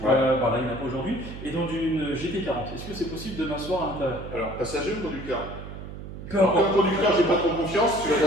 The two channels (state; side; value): noise; right; hum, 11 dB below the sound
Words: Ouais. Là, il n'y en a pas aujourd'hui, et dans une GT40. Est-ce que c'est possible de m'asseoir à l'intérieur? Alors, passager ou conducteur? Comme conducteur, j'ai pas trop confiance, tu vas